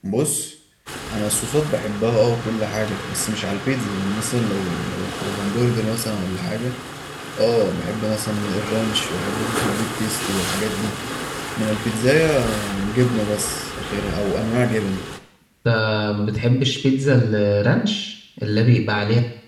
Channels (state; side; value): identical; both; correlation 1.00